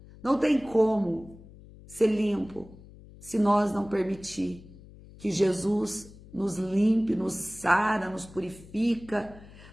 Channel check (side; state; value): left; noise; hum, 20 dB below the sound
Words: não tem como ser limpo se nós não permitir que Jesus nos limpe, nos sara, nos purifica.